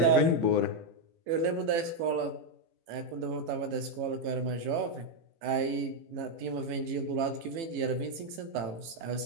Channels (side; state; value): left; late; 18 ms